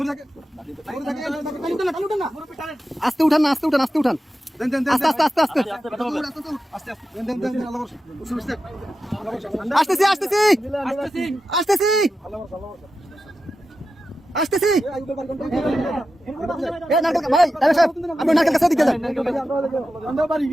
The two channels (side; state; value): both; normal; correlation 0.91